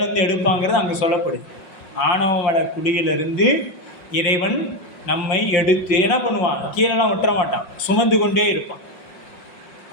எடுப்பாங்கிறது அங்கே சொல்லப்படுது. ஆணவமட குடியிலிருந்து இறைவன் நம்மை எடுத்து என்ன பண்ணுவான்? கீழெல்லாம் விட்டுற மாட்டான், சுமந்து கொண்டே இருப்பான்.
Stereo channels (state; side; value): late; right; 5.7 ms